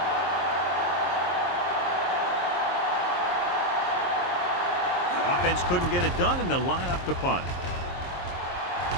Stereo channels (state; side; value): late; right; 23 ms